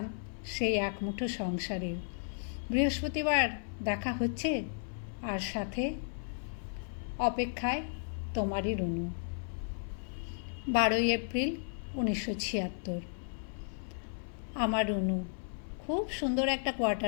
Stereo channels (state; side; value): silent; right; 55 dB below the other